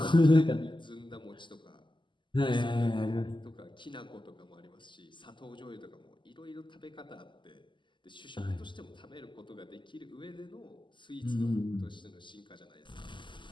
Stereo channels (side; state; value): right; late; 0.23 ms